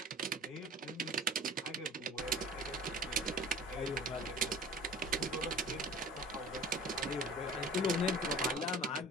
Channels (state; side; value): normal; both; correlation 0.42